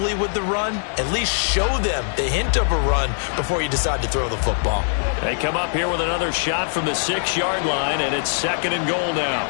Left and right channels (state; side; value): silent; right; 64 dB below the other